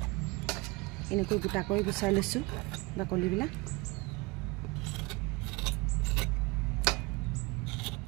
এনেকৈ গোটা কৰি গুচাই লৈছোঁ বাকলিবিলাক।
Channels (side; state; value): left; quieter; 24.9 dB